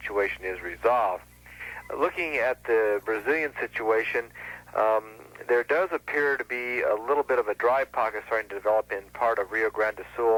is resolved. Looking at the Brazilian situation, there does appear to be a little bit of a dry pocket starting to develop in part of Rio Grande do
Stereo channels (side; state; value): both; identical; correlation 1.00